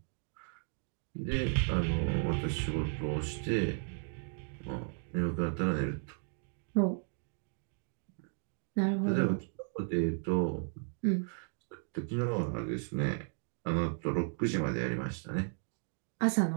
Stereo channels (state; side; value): silent; left; 55 dB below the other